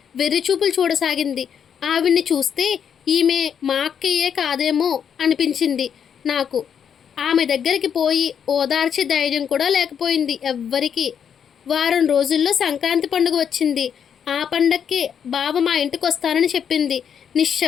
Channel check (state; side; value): quieter; right; 7.9 dB